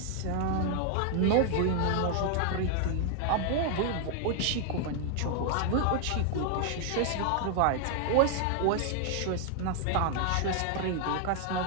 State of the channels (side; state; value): both; different; correlation 0.00